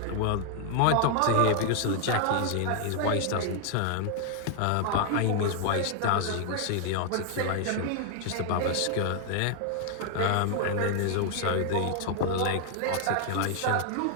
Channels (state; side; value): different; both; correlation 0.00